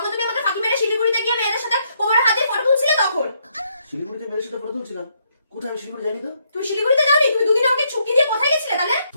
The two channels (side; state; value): both; inverted; correlation -0.74